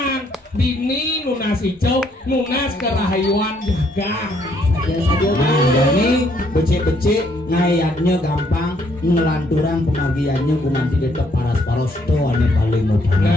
Bini nunas hijau, nunas kerahayuan jaga. Ini becek-becek ngayatnya gampang, ngelanturan pemagiannya kuman tidak paras-paros tuh ane paling mudah.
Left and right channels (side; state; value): both; normal; correlation 0.69